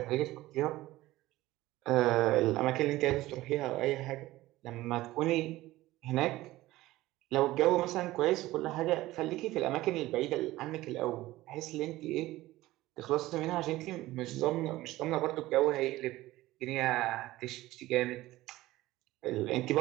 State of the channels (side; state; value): left; quieter; 17.2 dB